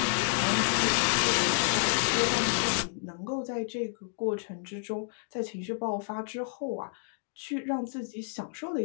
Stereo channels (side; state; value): right; silent; digital silence